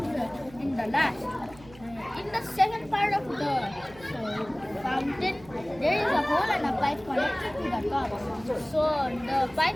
in the last. In the second part of the fountain, there is a hole and a pipe connected to the top. So the pipe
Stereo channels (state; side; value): noise; right; hum, 21 dB below the sound